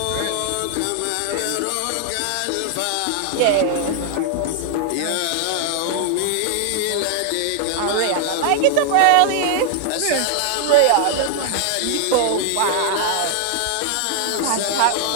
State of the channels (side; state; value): both; different; correlation 0.00